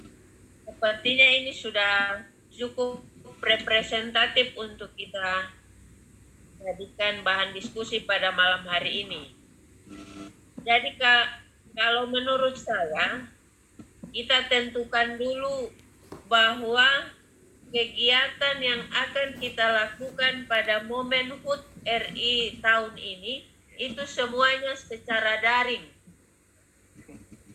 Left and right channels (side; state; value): both; identical; correlation 1.00